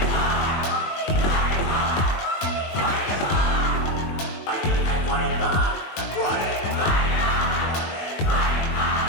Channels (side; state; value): right; late; 21 ms